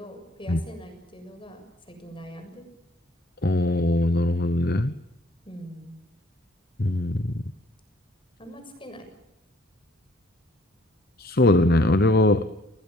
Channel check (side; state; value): both; normal; correlation 0.60